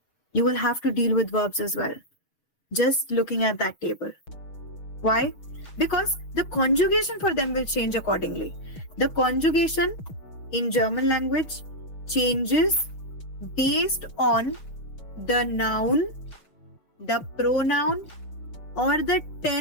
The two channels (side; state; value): right; late; 6.3 ms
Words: You will have to deal with verbs as well. Just looking at that table. Why? Because the conjugation for them will change accordingly. The conjugation in German language changes based on the noun, the pronoun, or the